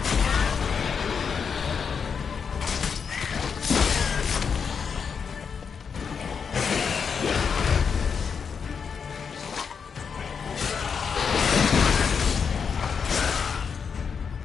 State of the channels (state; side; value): quieter; right; 6.3 dB